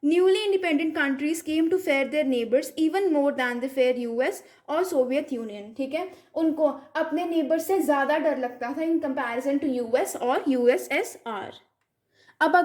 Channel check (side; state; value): both; identical; correlation 1.00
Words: newly independent countries came to fear their neighbours even more than the fear US और सोवियत यूनियन, ठीक है, उनको अपने नेबर से ज़्यादा डर लगता था इन कंपैरिजन टू यूएस और यूएसएसआर। अब